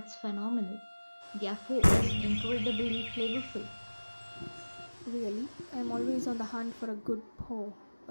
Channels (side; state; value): both; inverted; correlation -1.00